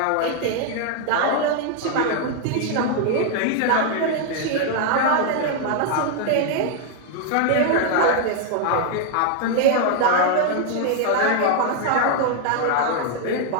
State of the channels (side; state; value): both; different; correlation 0.00